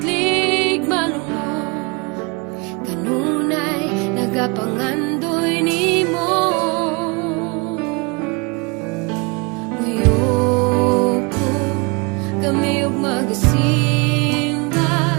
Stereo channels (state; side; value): quieter; left; 29.3 dB